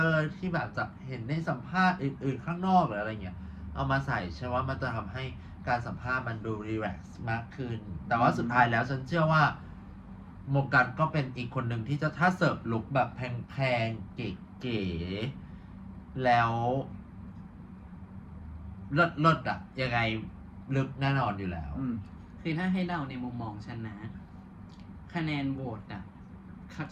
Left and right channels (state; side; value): identical; both; correlation 1.00